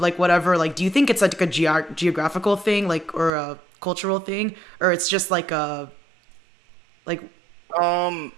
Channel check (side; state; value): left; drops out; at 3.3 s